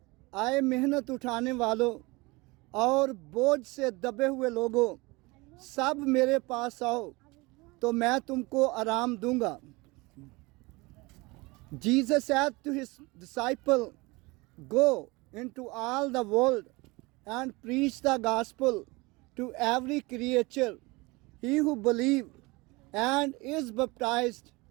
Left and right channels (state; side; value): quieter; left; 24.2 dB